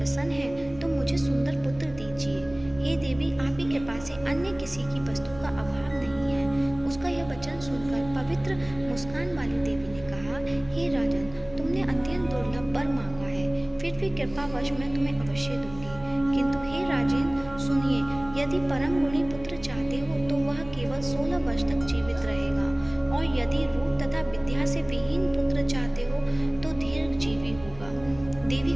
हैं तो मुझे सुंदर पुत्र दीजिए। हे देवी, आप ही कृपा से अन्य किसी की वस्तु का अभाव नहीं है। उसका यह वचन सुनकर पवित्र मुस्कान वाली देवी ने कहा, हे राजन, तुमने अत्यंत दुर्लभ वर मांगा है, फिर भी कृपावश मैं तुम्हें अवश्य दूंगी। किंतु हे राजन, सुनिए, यदि परम गुणी पुत्र चाहते हो तो वह केवल 16 वर्ष तक जीवित रहेगा, और यदि रूप तथा विद्या से विहीन पुत्र चाहते हो तो दीर्घजीवी होगा। देवी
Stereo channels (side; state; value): right; noise; rumble, 18 dB below the sound